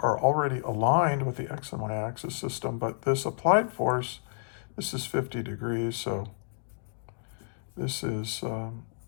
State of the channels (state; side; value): silent; right; digital silence